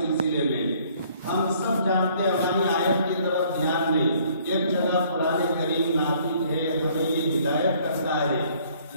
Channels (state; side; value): inverted; both; correlation -0.60